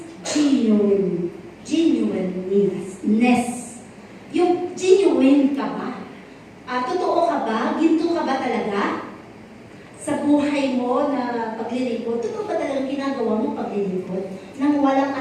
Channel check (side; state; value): both; identical; correlation 1.00